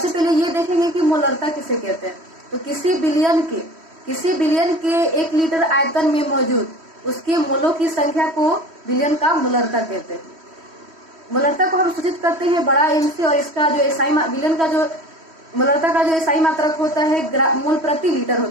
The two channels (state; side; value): late; left; 3.1 ms